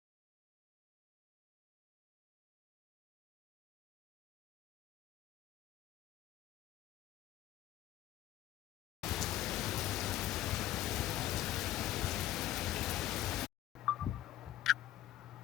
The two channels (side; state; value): right; quieter; 13.7 dB